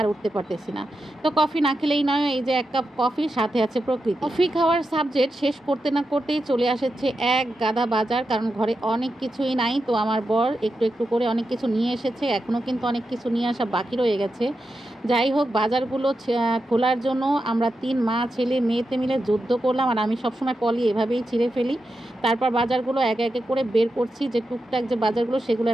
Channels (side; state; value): both; normal; correlation 0.88